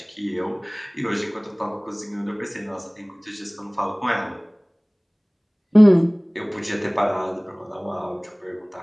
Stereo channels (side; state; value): both; identical; correlation 1.00